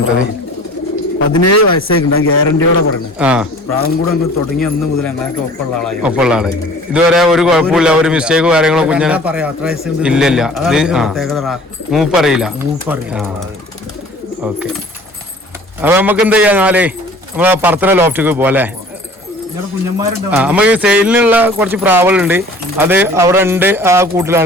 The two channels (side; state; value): both; normal; correlation 0.47